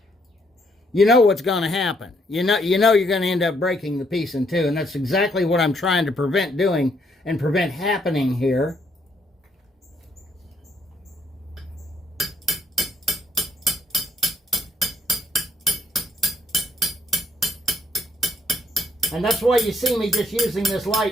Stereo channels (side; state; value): both; normal; correlation 0.70